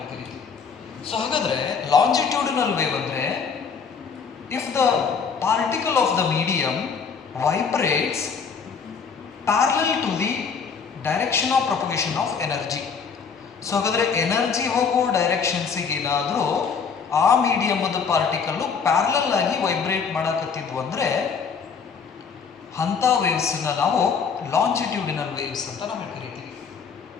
ಕರಿತೀವಿ. ಸೊ ಹಾಗಾದ್ರೆ ಲಾಂಜಿಟ್ಯೂಡಿನಲ್ ವೇವ್ ಅಂದ್ರೆ if the particle of the medium vibrates parallel to the direction of propagation of energy. So ಹಾಗಾದ್ರೆ ಎನರ್ಜಿ ಹೋಗೋ ಡೈರೆಕ್ಷನ್ಸಿಗೆ ಏನಾದರೂ ಆ ಮೀಡಿಯಮದ ಪಾರ್ಟಿಕಲ್ಲು ಪ್ಯಾರಲಲ್ ಆಗಿ ವೈಬ್ರೇಟ್ ಮಾಡಕತ್ತಿದ್ವು ಅಂದ್ರೆ ಅಂಥ ವೇವ್ಸ್ನ ನಾವು ಲಾಂಜಿಟ್ಯೂಡಿನಲ್ ವೇವ್ಸ್ ಅಂತ ನಾವು ಕರಿತೀವಿ.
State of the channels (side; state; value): right; quieter; 5.9 dB